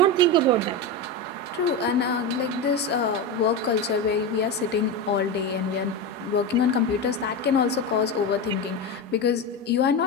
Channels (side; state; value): both; normal; correlation 0.17